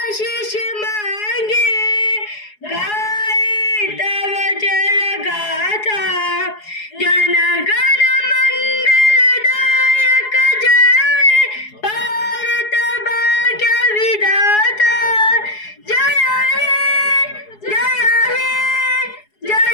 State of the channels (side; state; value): right; late; 4.7 ms